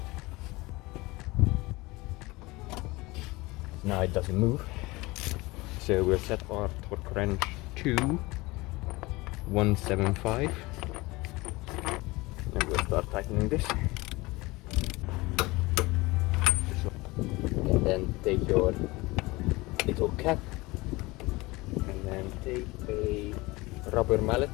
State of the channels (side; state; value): right; quieter; 22.2 dB